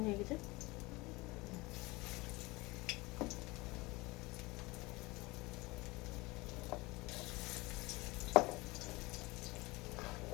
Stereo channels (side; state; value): right; quieter; 22.7 dB